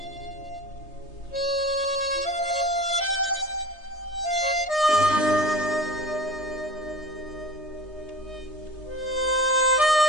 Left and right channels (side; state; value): both; normal; correlation 0.37